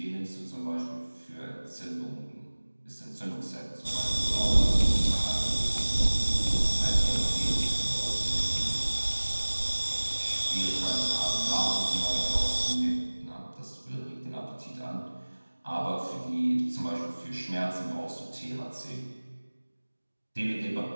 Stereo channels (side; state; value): both; inverted; correlation -1.00